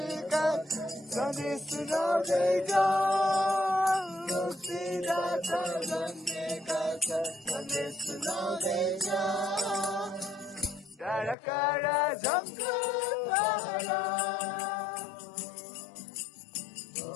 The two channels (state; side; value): drops out; right; at 11.4 s